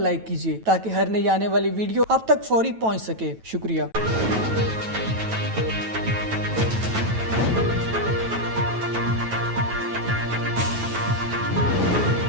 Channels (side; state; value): left; late; 9.1 ms